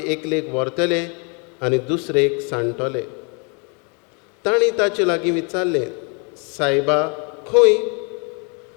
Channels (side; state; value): right; quieter; 34.7 dB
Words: एकलेक व्हरतले आनी दुसरेक सांडटले. तांणी ताचे लागीं विचारलें, सायबा खंय?